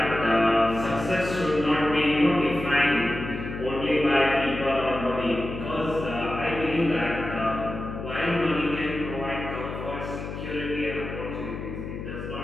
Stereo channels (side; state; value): left; noise; hum, 8 dB below the sound